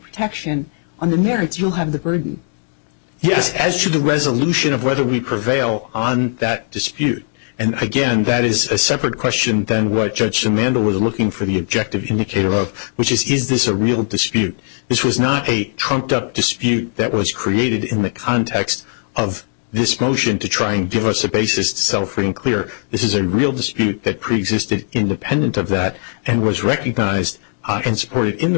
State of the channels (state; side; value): silent; right; digital silence